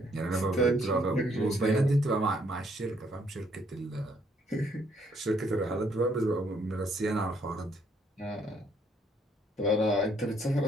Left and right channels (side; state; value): both; normal; correlation 0.68